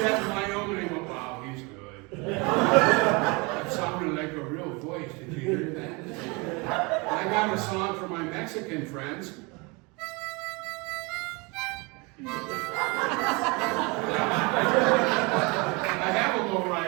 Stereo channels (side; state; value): left; quieter; 28.0 dB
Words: in Wyoming and went, wow, he's good. That sounded like a real voice. Did you hear that? I got a song for my Mexican friends. I have a